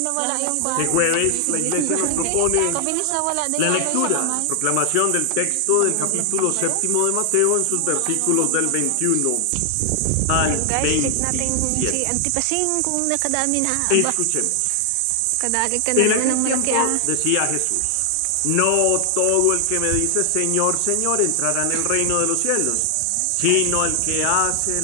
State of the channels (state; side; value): different; both; correlation 0.00